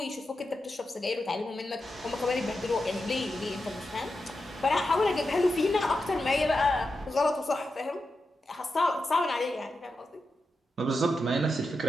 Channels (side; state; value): both; normal; correlation 0.89